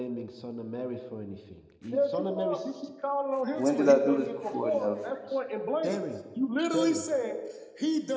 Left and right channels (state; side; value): identical; both; correlation 1.00